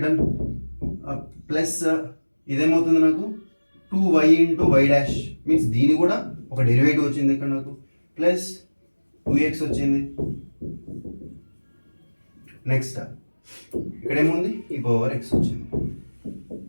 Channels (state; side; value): inverted; both; correlation -1.00